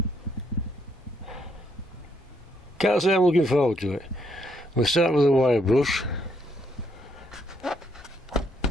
Can't say I'm looking forward to it. We'll start with a wire brush.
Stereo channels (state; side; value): normal; both; correlation 0.73